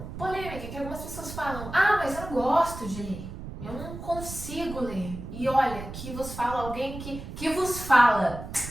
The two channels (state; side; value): noise; right; rumble, 10 dB below the sound